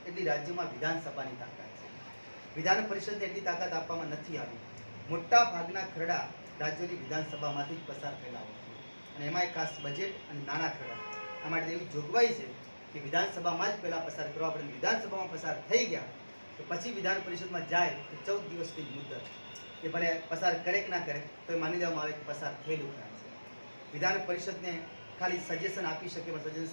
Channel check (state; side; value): inverted; both; correlation -1.00